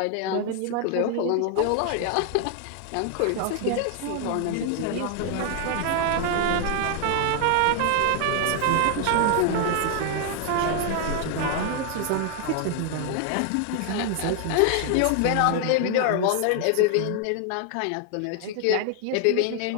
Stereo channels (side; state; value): both; different; correlation 0.00